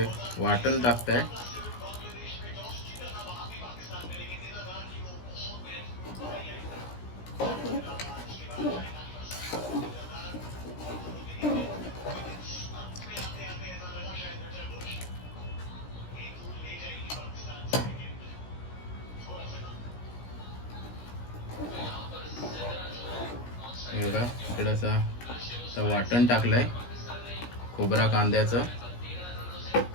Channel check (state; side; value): late; right; 17 ms